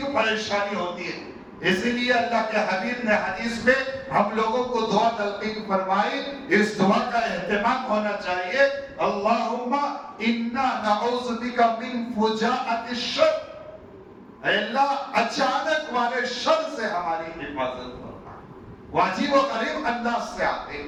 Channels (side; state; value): both; identical; correlation 1.00